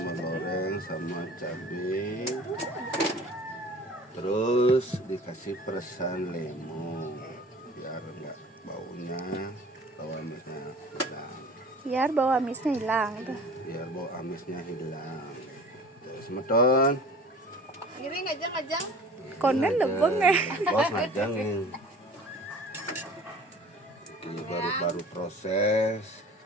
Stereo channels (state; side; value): normal; both; correlation 0.44